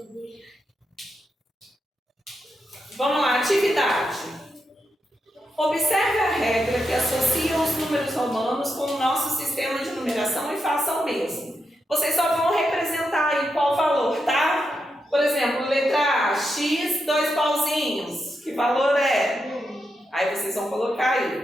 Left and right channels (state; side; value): normal; both; correlation 0.85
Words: Vamos lá, atividade. Observe a regra que associa os números romanos com o nosso sistema de numeração e faça o mesmo. Vocês só vão representar aí qual valor, tá? Por exemplo, letra A, X, 2 pauzinhos. Que valor é? Aí vocês vão colocar